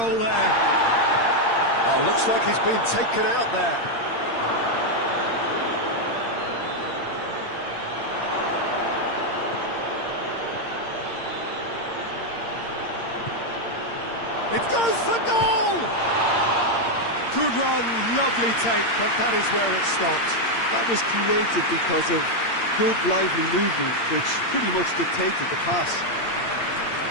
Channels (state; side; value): late; right; 8.7 ms